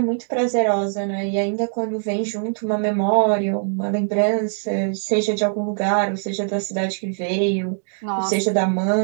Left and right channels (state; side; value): silent; left; digital silence